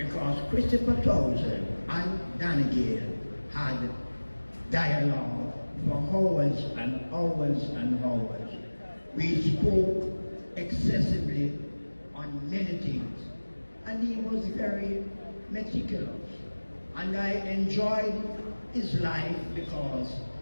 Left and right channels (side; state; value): both; inverted; correlation -1.00